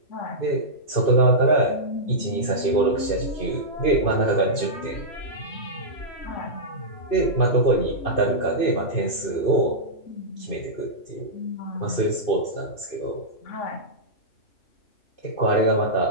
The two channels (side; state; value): right; late; 2.6 ms